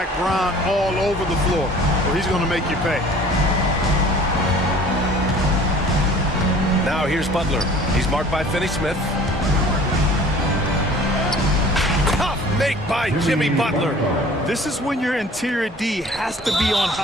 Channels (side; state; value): both; normal; correlation 0.48